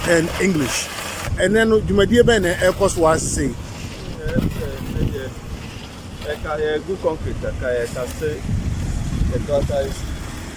and English. And then my dear Ben, Air Force was saying, good concrete, I can say the gutter is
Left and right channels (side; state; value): both; identical; correlation 1.00